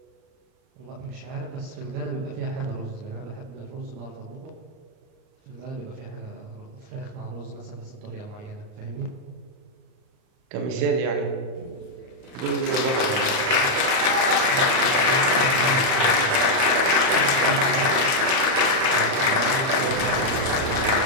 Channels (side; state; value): left; late; 38 ms